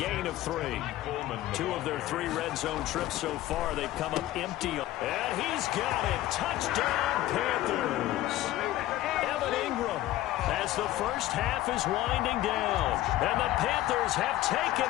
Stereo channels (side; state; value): right; quieter; 15.1 dB